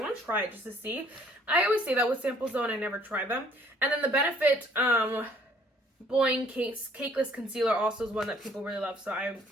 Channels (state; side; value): normal; both; correlation 0.60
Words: to try it just to see. I always say that with samples though, and I never try them. And then the Benefit Boing Cakeless Concealer also is one that people really love, so